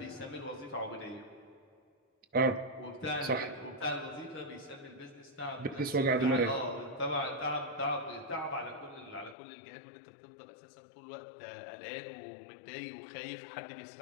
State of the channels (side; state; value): right; drops out; at 9.3 s